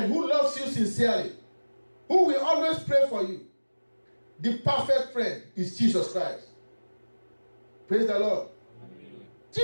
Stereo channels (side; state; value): both; inverted; correlation -1.00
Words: who loves you sincerely, who will always pray for you. The perfect friend is Jesus Christ. Praise the Lord. Amen.